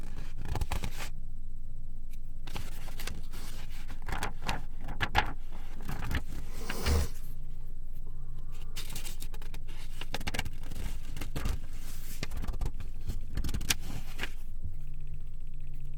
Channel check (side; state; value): both; identical; correlation 1.00